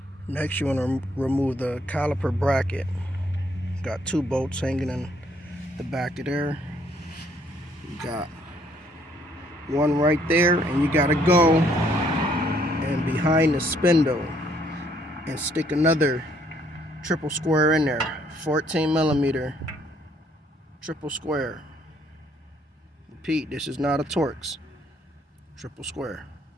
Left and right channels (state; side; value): normal; both; correlation 0.66